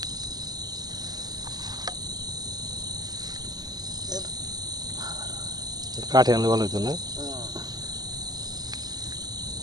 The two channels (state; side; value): late; left; 0.19 ms